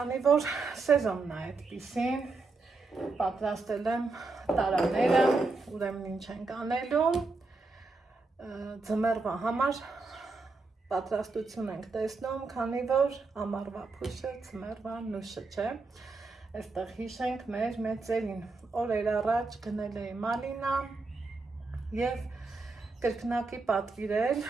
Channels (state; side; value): quieter; left; 3.7 dB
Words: որ սեզոնն է այդպիսին, պատրաստել եմ տարաները, ուրեմն ինչ ենք անելու, ձմեռվա համար պատրաստություն ենք տեսնում, քանի որ ամառվա փուշը ձմեռվա նուշը չէ, այստեղ հիշենք մեր մեծերին, օրեր առաջ գնել էի մալինա և կրկնակի պատվիրել,